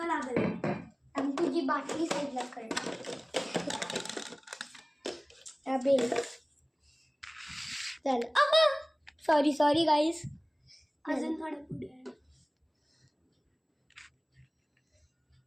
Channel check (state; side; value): identical; both; correlation 1.00